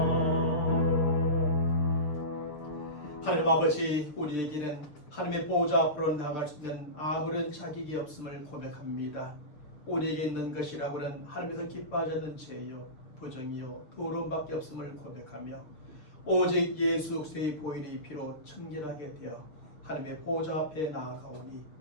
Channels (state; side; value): late; right; 6.7 ms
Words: 하나님 아버지, 우리에게는 하나님의 보호자 앞으로 나갈 수 있는 아무런 자격이 없음을 고백합니다. 우리에게 있는 것이라고는 하나님께서 기뻐하지 않는 죄요, 부정이요, 더러움밖에 없음을 고백하며 오직 예수 그리스도의 보혈의 피로 청결하게 되어 하나님의 보호자 앞에 나아가오니